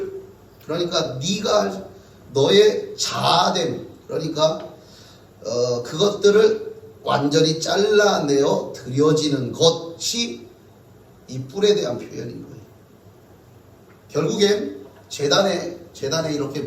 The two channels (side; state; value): both; identical; correlation 1.00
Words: 그러니까 네가 너의 자아됨, 그러니까 그것들을 완전히 잘라내어 드려지는 것이 이 뿔에 대한 표현인 거예요. 결국엔 제단에 이렇게